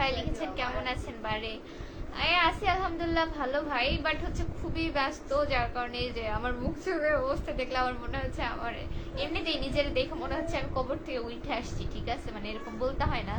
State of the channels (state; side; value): identical; both; correlation 1.00